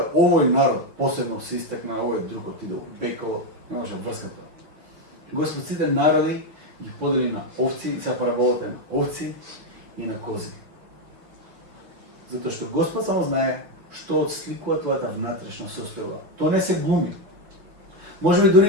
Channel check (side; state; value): left; late; 6.1 ms